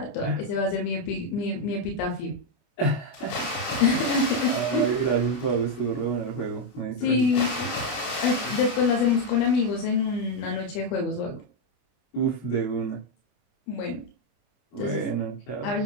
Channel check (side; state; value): right; late; 25 ms